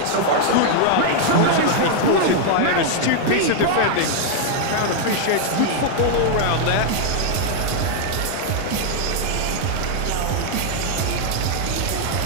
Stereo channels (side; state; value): both; different; correlation 0.00